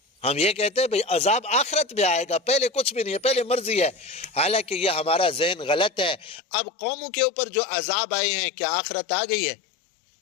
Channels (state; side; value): drops out; right; at 6.4 s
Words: ہم یہ کہتے ہیں بھئی عذاب آخرت میں آئے گا، پہلے کچھ بھی نہیں ہے، پہلے مرضی ہے۔ حالانکہ یہ ہمارا ذہن غلط ہے۔ اب قوموں کے اوپر جو عذاب آئے ہیں، کیا آخرت آ گئی ہے؟